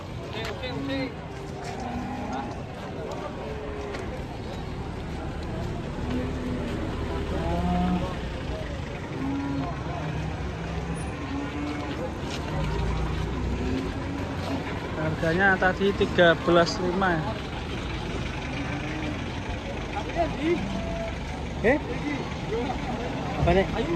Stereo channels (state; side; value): identical; both; correlation 1.00